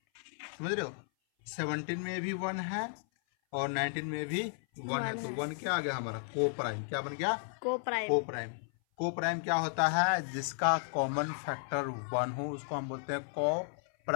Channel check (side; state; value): right; silent; 55 dB below the other